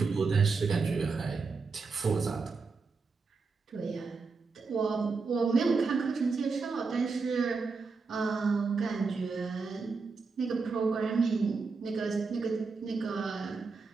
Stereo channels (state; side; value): quieter; left; 4.5 dB